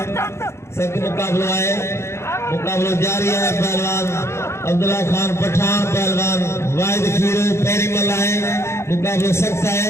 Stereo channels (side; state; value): right; late; 0.13 ms